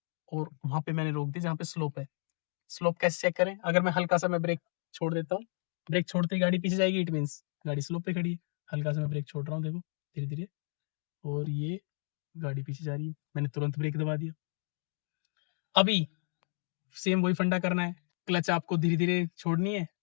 और वहां पे मैंने रोक दी जहां पे स्लोप है। स्लोप कैसे चेक करें, अगर मैं हल्का सा मैं ब्रेक छोड़ देता हूँ, ब्रेक छोड़ते ही गाड़ी पीछे जाएगी, इट मीन्स गाड़ी स्लोप पे खड़ी है। हल्का सा मैं ब्रेक छोड़ रहा हूँ, देखो धीरे धीरे, और ये गाड़ी पीछे जा रही है, मैंने तुरंत ब्रेक दबा दिया। अभी सेम वही फंडा करना है, क्लच आपको धीरे धीरे छोड़नी है,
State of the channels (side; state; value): right; silent; 56 dB below the other